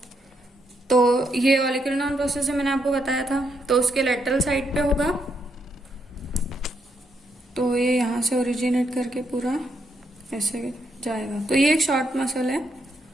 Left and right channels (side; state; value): both; normal; correlation 0.78